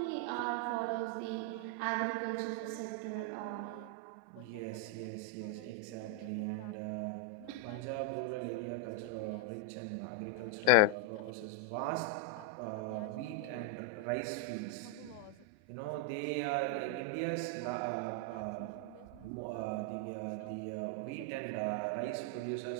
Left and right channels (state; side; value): different; both; correlation 0.01